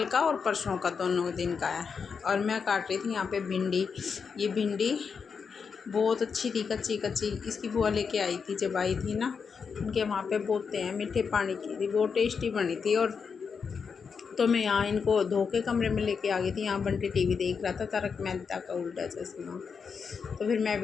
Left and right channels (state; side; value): quieter; right; 5.9 dB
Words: का और परसों का दोनों दिन का है। और मैं काट रही थी यहाँ पे भिंडी। ये भिंडी बहुत अच्छी थी, कच्ची कच्ची। इसकी बुआ लेके आई थी जब आई थी ना, उनके वहाँ पे बोते हैं मीठे पानी की थी, बहुत टेस्टी बनी थी। और तो मैं यहाँ इनको धो के कमरे में लेके आ गई थी। यहाँ बंटी टीवी देख रहा था, तारक मेहता का उल्टा चश्मा। तो फिर मैं